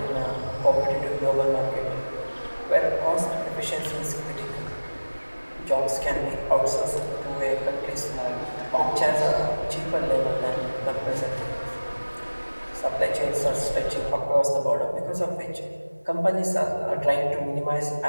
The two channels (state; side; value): inverted; both; correlation -1.00